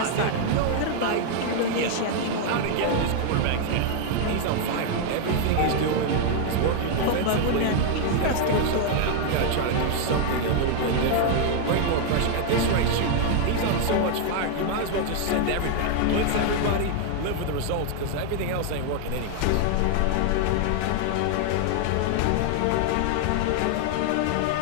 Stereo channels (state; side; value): different; both; correlation 0.00